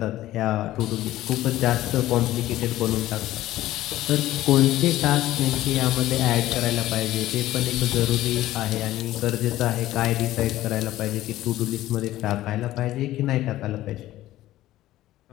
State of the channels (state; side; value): quieter; right; 15.1 dB